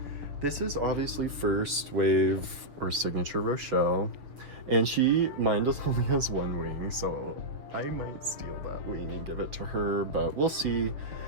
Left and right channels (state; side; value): late; left; 6.6 ms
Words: this is obviously first wave or signature Rochelle, and mine just only has one wing, so I might steal that wing and give it to her, but we'll see.